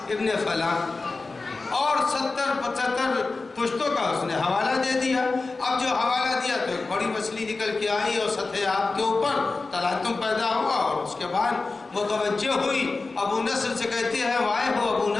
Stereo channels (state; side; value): quieter; right; 3.7 dB